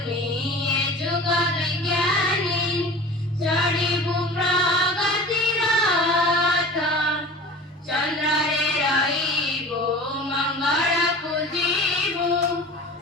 जुग विज्ञानी चढिबु प्रगति रथ चंद्र रे रहिबो मंगल पूजिबु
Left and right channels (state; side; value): normal; both; correlation 0.38